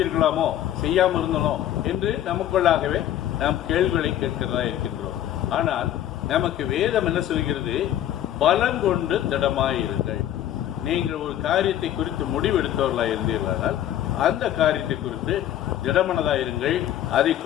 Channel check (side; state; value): right; quieter; 11.9 dB